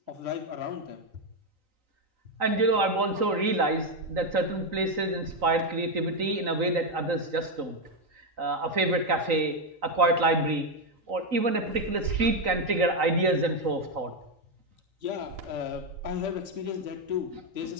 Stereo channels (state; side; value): late; left; 3.9 ms